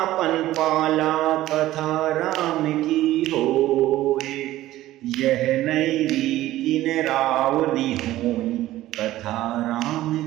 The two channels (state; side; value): quieter; left; 15.2 dB